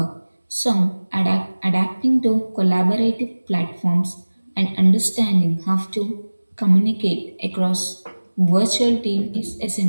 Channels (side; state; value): both; inverted; correlation -1.00